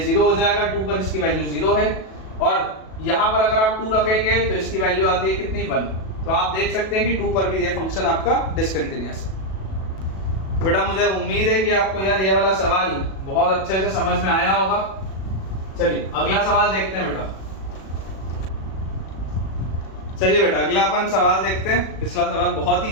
0 हो जाएगा, 2 पर इसकी वैल्यू 0 है, और यहाँ पर अगर आप 2 रखेंगे तो इसकी वैल्यू आती है कितनी? 1। तो आप देख सकते हैं कि 2 पर भी ये फंक्शन आपका डिसकंटिन्यूअस है। बेटा मुझे उम्मीद है कि आपको यार ये वाला सवाल बहुत अच्छे से समझ में आया होगा। चलिए अगला सवाल देखते हैं बेटा। चलिए बेटा अगला अपन सवाल देखते हैं। पिछला सवाल बहुत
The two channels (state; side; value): late; right; 37 ms